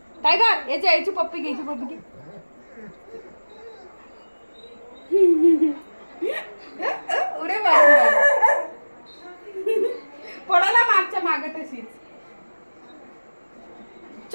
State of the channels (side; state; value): both; inverted; correlation -1.00